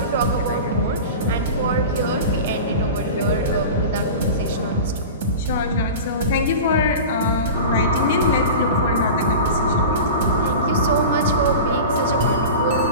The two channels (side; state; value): both; inverted; correlation -0.31